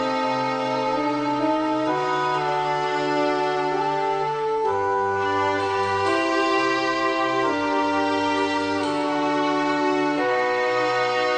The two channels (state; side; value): identical; both; correlation 1.00